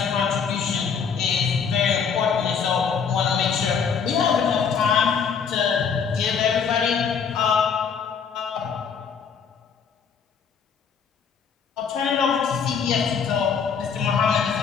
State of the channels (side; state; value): right; quieter; 6.5 dB